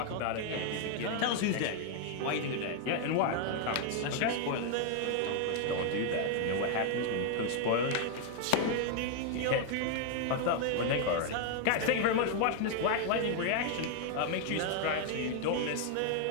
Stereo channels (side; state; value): both; different; correlation 0.00